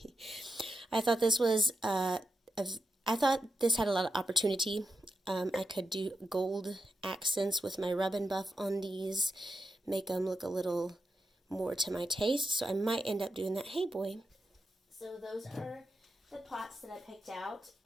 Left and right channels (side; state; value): both; normal; correlation 0.87